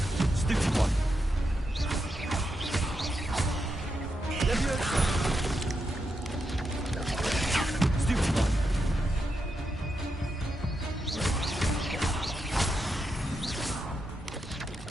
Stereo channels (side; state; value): both; normal; correlation 0.84